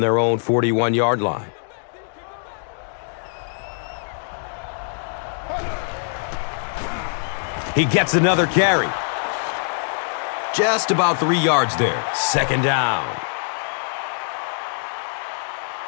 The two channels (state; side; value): silent; right; digital silence